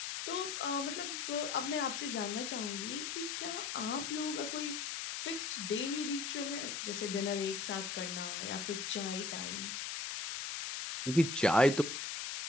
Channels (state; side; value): noise; left; hiss, 4 dB below the sound